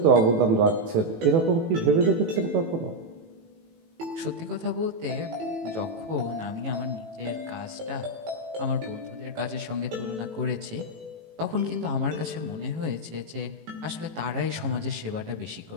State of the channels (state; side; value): late; left; 18 ms